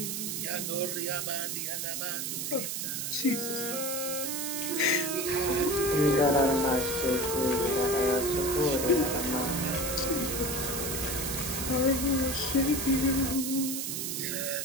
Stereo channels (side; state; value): right; noise; hiss, 2 dB below the sound